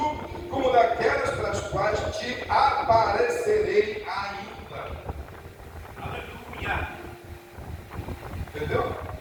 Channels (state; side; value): identical; both; correlation 1.00